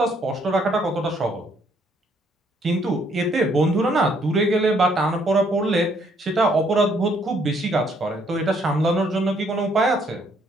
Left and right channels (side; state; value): both; normal; correlation 0.68